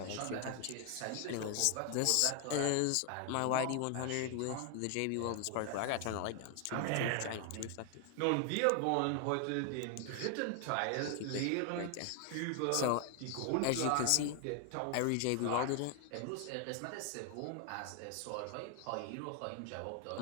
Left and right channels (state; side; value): different; both; correlation 0.00